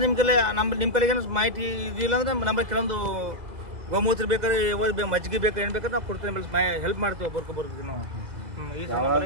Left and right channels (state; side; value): late; left; 2.0 ms